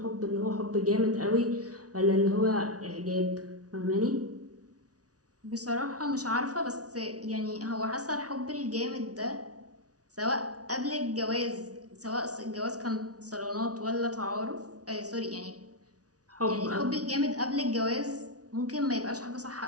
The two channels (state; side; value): late; left; 0.68 ms